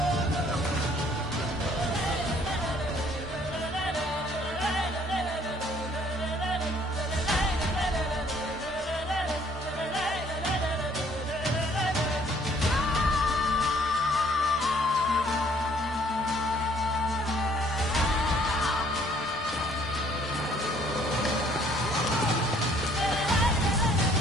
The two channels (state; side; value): normal; both; correlation 0.61